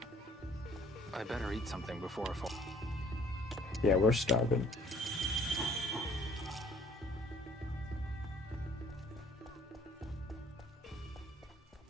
I better eat something before I fall. Yeah, we're starving.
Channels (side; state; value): both; normal; correlation 0.57